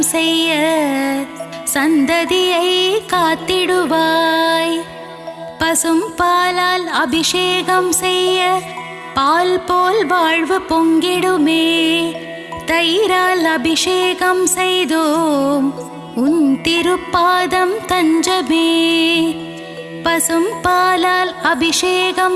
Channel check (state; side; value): identical; both; correlation 1.00